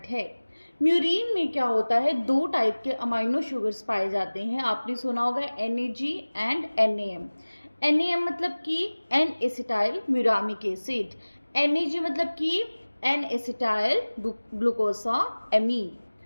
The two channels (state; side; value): inverted; both; correlation -1.00